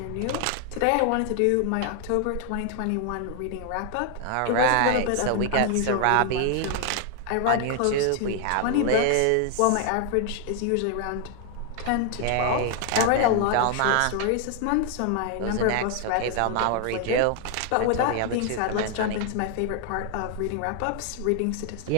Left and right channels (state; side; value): different; both; correlation 0.00